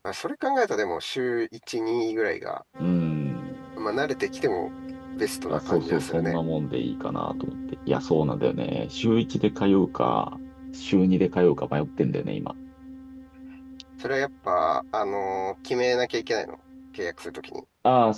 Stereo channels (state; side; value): identical; both; correlation 1.00